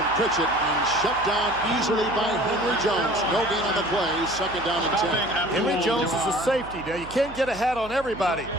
Pritchett and shut down easily by Henry Jones. No gain on the play, second down and 10. Henry Jones is a safety. Now, you can't get a hat on everybody.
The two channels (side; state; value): right; noise; hum, 17 dB below the sound